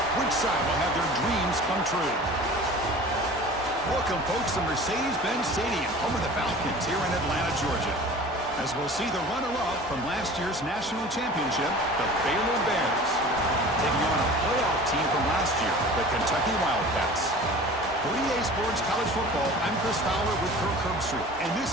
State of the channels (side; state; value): both; normal; correlation 0.41